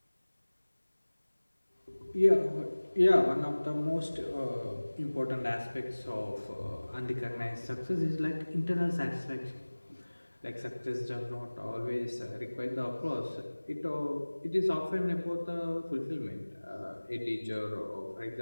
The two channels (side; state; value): both; inverted; correlation -1.00